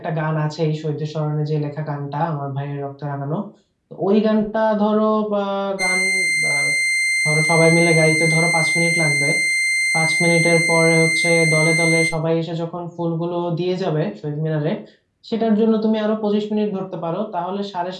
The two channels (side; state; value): both; identical; correlation 1.00